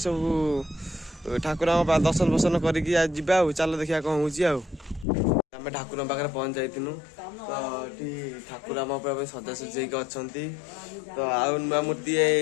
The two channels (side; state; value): right; drops out; at 5.1 s